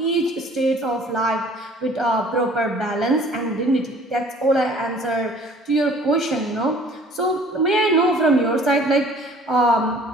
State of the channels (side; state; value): both; normal; correlation 0.52